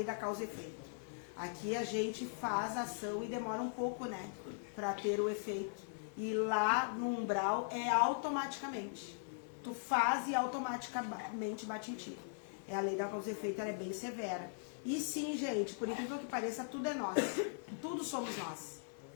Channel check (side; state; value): right; silent; digital silence